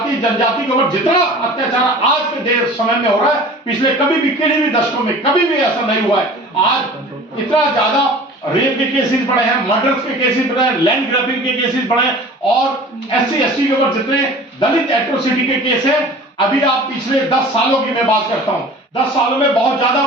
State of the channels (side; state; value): both; normal; correlation 0.42